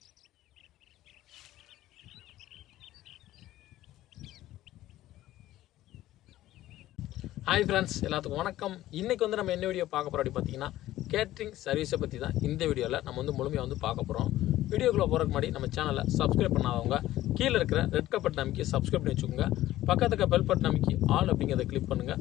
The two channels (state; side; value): quieter; right; 14.8 dB